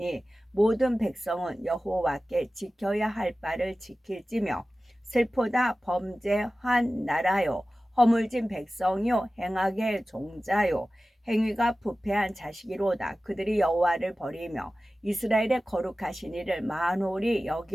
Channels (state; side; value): normal; both; correlation 0.96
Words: 모든 백성은 여호와께 지켜야 할 바를 지킬지며 슬프다 범죄한 나라요 허물진 백성이요 행악의 종자요 행위가 부패한 자식이로다. 그들이 여호와를 버리며 이스라엘의 거룩하신 이를 만홀히